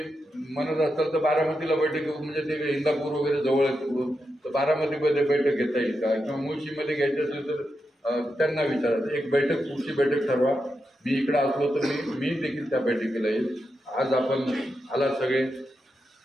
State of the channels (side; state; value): both; normal; correlation 0.87